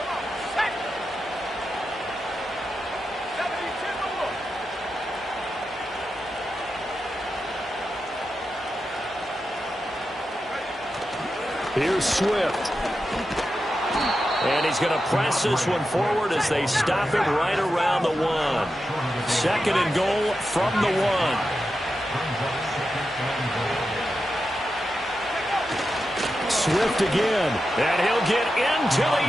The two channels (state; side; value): normal; both; correlation 0.89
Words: Set. 72 more. Here's Swift. And he's going to press this one forward as they stop it right around the 1. 2nd and goal from the 1. Swift again. And he'll get into the